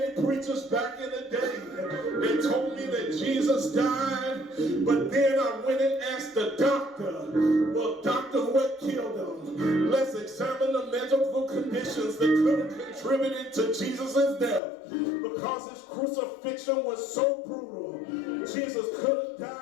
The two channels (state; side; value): drops out; right; at 14.6 s